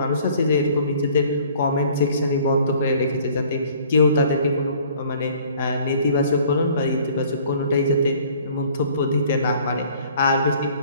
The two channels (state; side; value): inverted; both; correlation -0.55